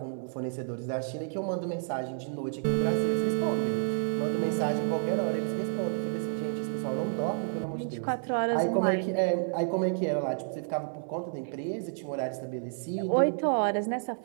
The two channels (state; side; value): silent; left; 58 dB below the other